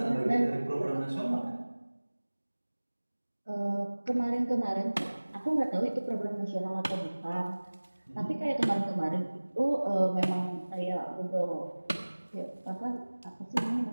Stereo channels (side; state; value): both; inverted; correlation -1.00